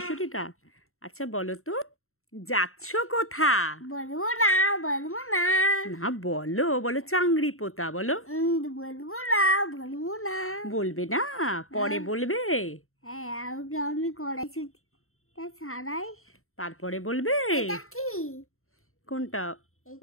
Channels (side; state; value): right; late; 0.62 ms